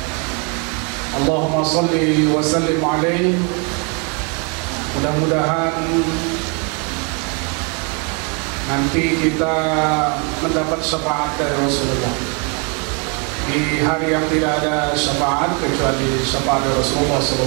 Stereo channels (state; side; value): quieter; left; 34.8 dB